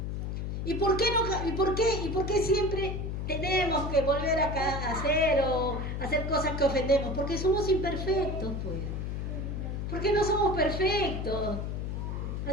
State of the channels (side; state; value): left; noise; hum, 3 dB below the sound